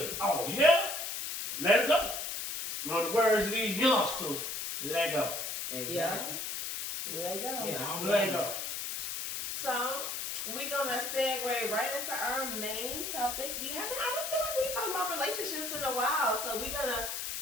Oh, yeah? Let it go. In the words of these youngsters, let go. Exactly. Let go. Yeah, I don't Let blame you. go. So we're gonna segue right into our main topic. I don't feel like we talked about relationships in a while, so we're gonna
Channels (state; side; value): noise; left; hiss, 4 dB below the sound